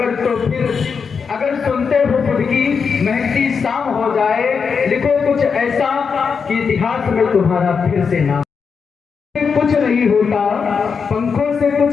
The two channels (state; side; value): quieter; right; 5.8 dB